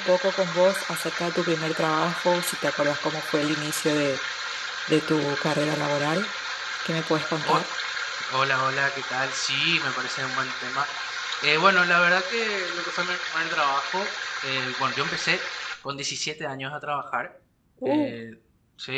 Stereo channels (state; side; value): identical; both; correlation 1.00